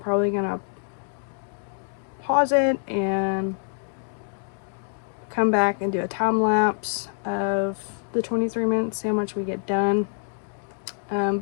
gonna pause it and come back and do a time lapse of the 23 minutes, see how much we get done.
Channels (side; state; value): right; silent; digital silence